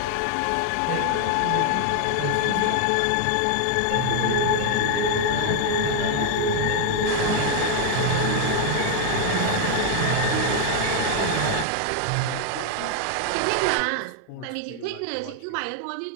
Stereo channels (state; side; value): different; both; correlation 0.01